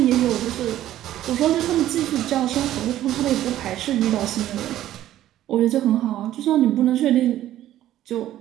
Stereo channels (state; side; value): quieter; left; 13.1 dB